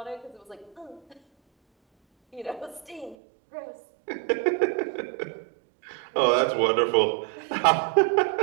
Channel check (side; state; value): left; drops out; at 3.2 s